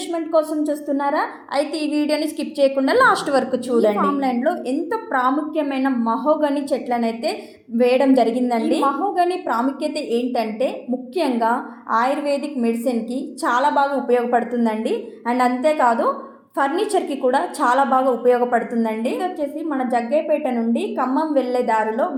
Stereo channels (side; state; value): both; identical; correlation 1.00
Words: కోసం చూస్తున్నారా? అయితే ఈ వీడియోని స్కిప్ చేయకుండా లాస్ట్ వరకు చూడండి. ఫామ్ ల్యాండ్లో ఎంతో ప్రాముఖ్యమైన మహోగని చెట్లనైతే వేయడం జరిగిందండి. మహోగని ప్రాముఖ్యత ఏంటంటే ముఖ్యంగా ఆయుర్వేదిక్ మెడిసిన్కి చాలా బాగా ఉపయోగపడుతుందండి. అండ్ అంతేకాదు ఫర్నిచర్కి కూడా చాలా బాగా ఉపయోగపడుతుందండి. ఇది వచ్చేసి మన జగ్గైపేట నుండి ఖమ్మం వెళ్ళే దారిలో